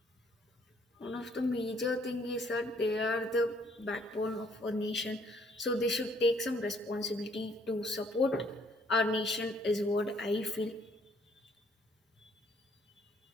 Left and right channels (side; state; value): both; normal; correlation 0.64